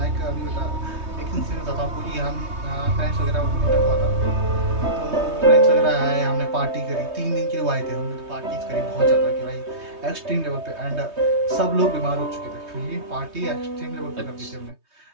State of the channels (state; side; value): late; left; 3.2 ms